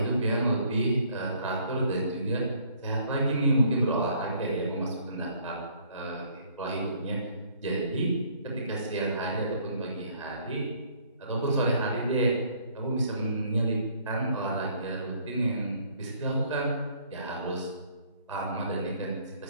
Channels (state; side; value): inverted; both; correlation -0.61